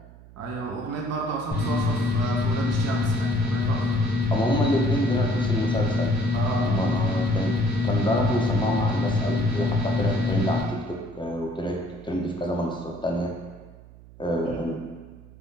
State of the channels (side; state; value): right; noise; hum, 21 dB below the sound